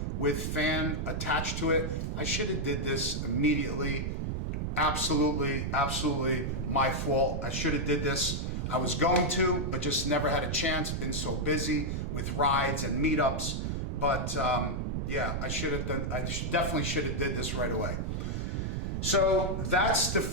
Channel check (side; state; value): right; noise; rumble, 1 dB below the sound